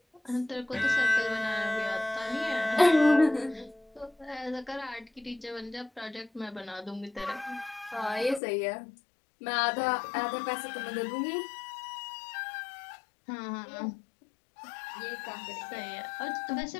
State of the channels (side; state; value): right; drops out; at 8.4 s